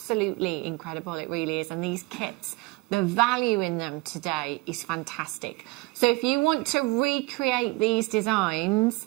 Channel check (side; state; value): left; quieter; 23.6 dB